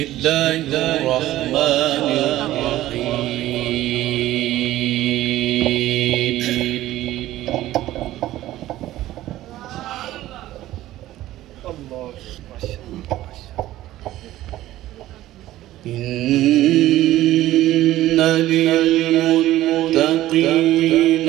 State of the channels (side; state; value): left; quieter; 14.9 dB